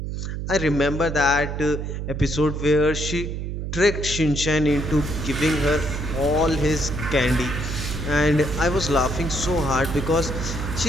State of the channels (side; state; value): right; noise; hum, 4 dB below the sound